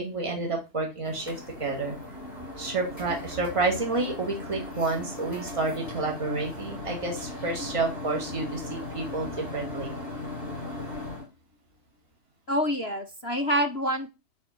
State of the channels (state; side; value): late; right; 2.9 ms